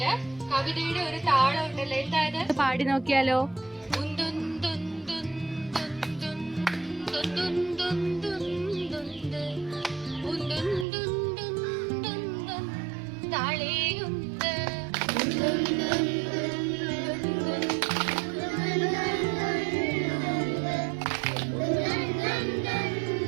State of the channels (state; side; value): drops out; left; at 10.9 s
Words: കവിതയുടെ ഒരു താളം ഉണ്ടല്ലോ, എന്തായത്? പാടി നോക്കിയാലോ? താളേയുണ്ട്